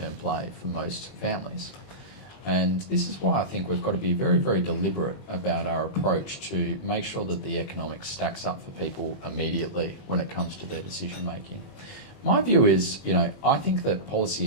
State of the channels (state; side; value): late; right; 21 ms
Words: play for most families. And this is why I think we've got to be very, very deliberate about our approach to make sure that the economics stacks up for people immediately when it comes to their decision making. My view is, I think that policy